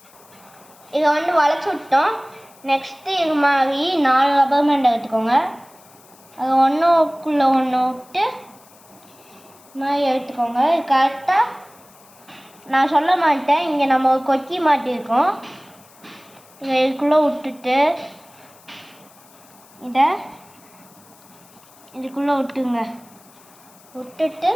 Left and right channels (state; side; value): noise; left; hiss, 26 dB below the sound